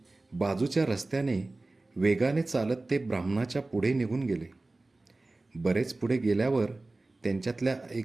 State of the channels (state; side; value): quieter; left; 3.1 dB